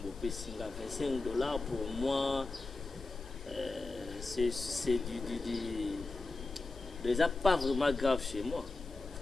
Pessinga $25 pour moi c'est déjà pas vraiment grave chez moi.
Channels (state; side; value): quieter; right; 3.3 dB